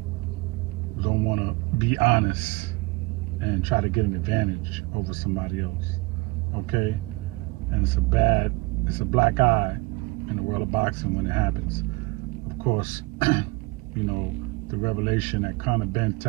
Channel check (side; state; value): left; quieter; 24.9 dB